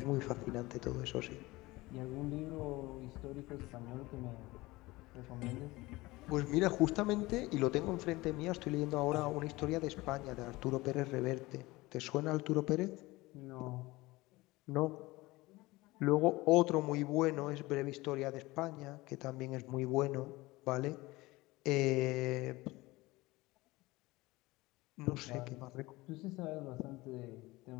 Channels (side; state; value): right; quieter; 20.7 dB